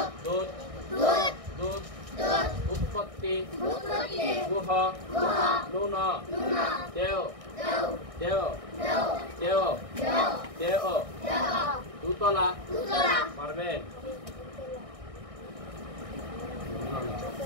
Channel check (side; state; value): left; late; 1.6 ms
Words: দুধ দুধ উৎপত্তি গুহ নুন দেও দেও দেও দেও দুতলা। পারবেন?